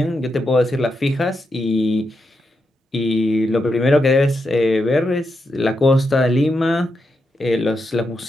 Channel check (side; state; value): both; normal; correlation 0.84